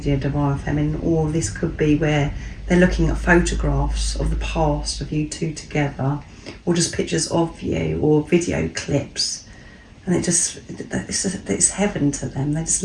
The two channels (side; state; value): both; identical; correlation 1.00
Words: Divine Feminine, or this could be where they're looking at photographs of the past of you two together, or just pictures of you, or video clips. And it's heaven to them. They just